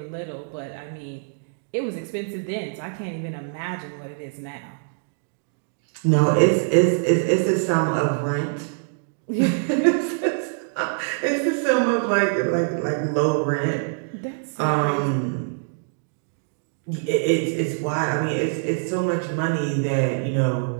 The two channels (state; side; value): silent; left; digital silence